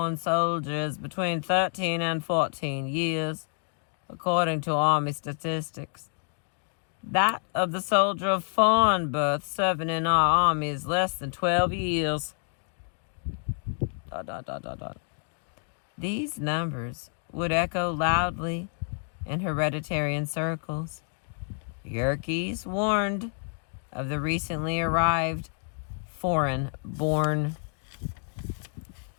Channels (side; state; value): right; silent; 57 dB below the other